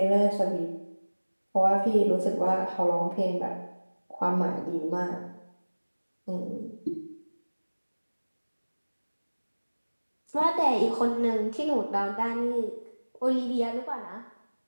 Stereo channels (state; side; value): inverted; both; correlation -1.00